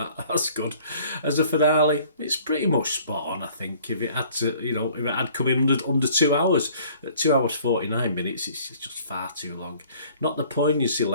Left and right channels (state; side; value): inverted; both; correlation -0.54